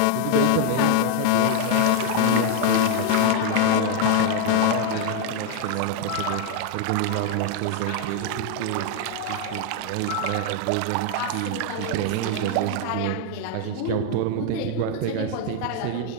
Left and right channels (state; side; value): different; both; correlation 0.00